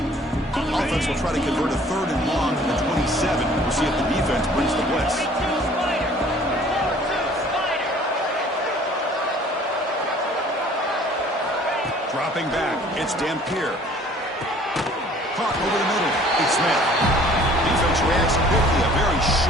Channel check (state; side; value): normal; both; correlation 0.53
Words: Offense will try to convert a 3rd and long from the 27. We'll see if the defense brings the blitz. Dropping back, it's Dampier. Caught over the middle. It's Smith. Defense reacts quickly. A very